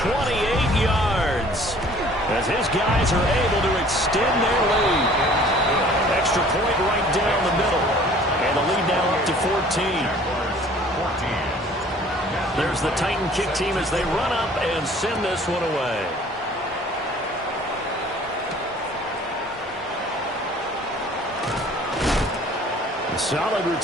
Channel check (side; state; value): both; normal; correlation 0.52